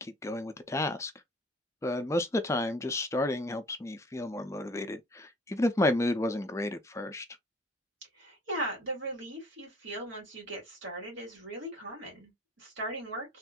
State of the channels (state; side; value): normal; both; correlation 0.53